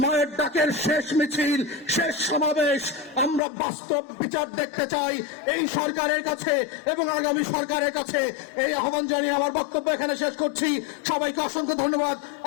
মায়ের ডাকের শেষ মিছিল, শেষ সমাবেশ, আমরা বাস্তব বিচার দেখতে চাই এই সরকারের কাছে এবং আগামী সরকারের কাছে। এই আহ্বান জানিয়ে আমার বক্তব্য এখানে শেষ করছি। সবাইকে অসংখ্য ধন্যবাদ।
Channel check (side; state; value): right; drops out; at 3.4 s